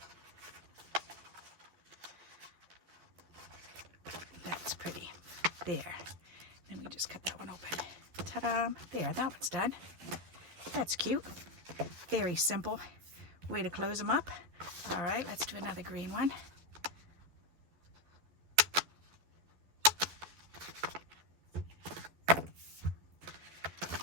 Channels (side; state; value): left; late; 12 ms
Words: That's pretty. There. Then we just cut that one open. Ta-da! There, that one's done. That's cute. Very simple way to close them up. All right, let's do another green one.